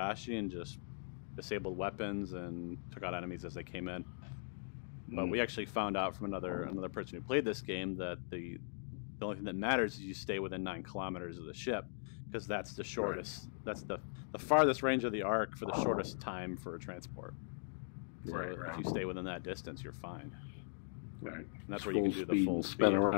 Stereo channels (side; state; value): right; silent; digital silence